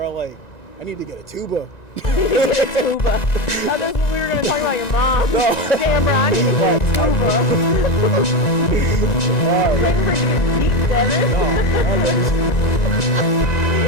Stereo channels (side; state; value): right; late; 1.9 ms